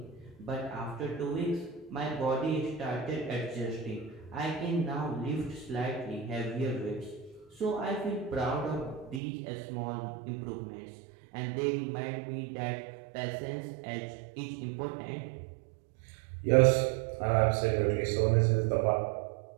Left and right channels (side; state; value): left; drops out; at 9.2 s